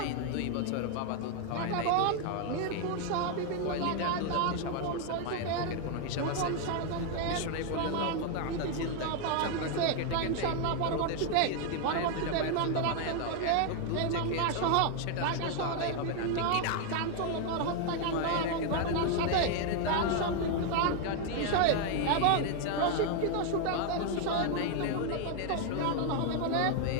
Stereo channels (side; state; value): both; different; correlation 0.00